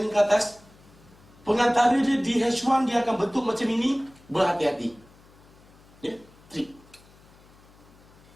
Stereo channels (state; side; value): noise; left; hum, 26 dB below the sound